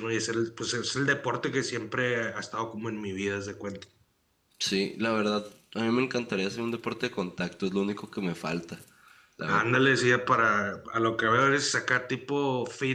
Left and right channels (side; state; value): both; identical; correlation 1.00